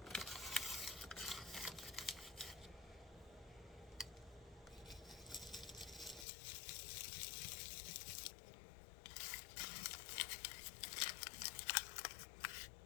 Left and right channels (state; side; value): drops out; right; at 6.2 s